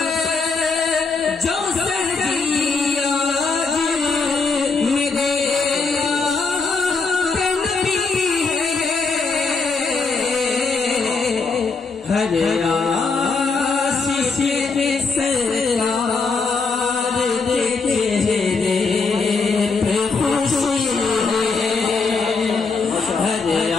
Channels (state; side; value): quieter; right; 4.4 dB